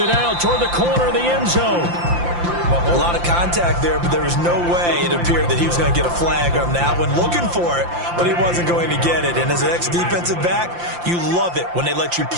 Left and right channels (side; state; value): left; late; 5.8 ms